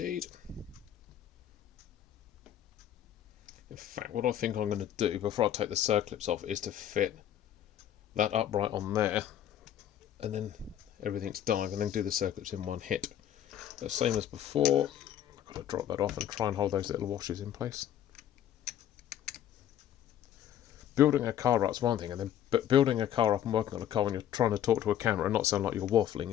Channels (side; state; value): right; quieter; 10.7 dB